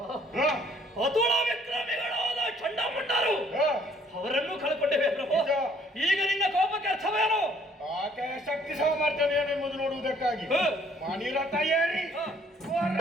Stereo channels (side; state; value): both; normal; correlation 0.61